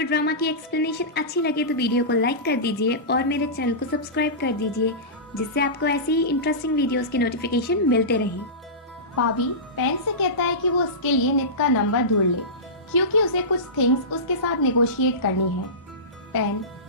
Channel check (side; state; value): both; normal; correlation -0.20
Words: ड्रामा की एक्सप्लेनेशन अच्छी लगे तो वीडियो को लाइक कर दीजिए और मेरे चैनल को सब्सक्राइब कर दीजिए, जिससे आपको ऐसी ही इंटरेस्टिंग वीडियोस के नोटिफिकेशन मिलते रहें। पावी पेन से कहता है कि वो उसके लिए नित का नंबर ढूंढ ले, क्योंकि उसे कुछ थिंग्स उसके साथ नेगोशिएट करनी है। पेन